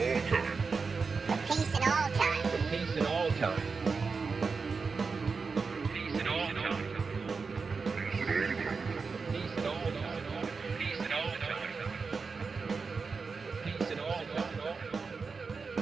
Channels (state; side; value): quieter; left; 4.8 dB